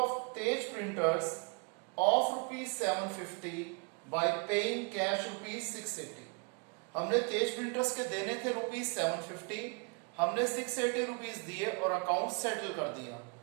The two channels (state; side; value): quieter; left; 37.1 dB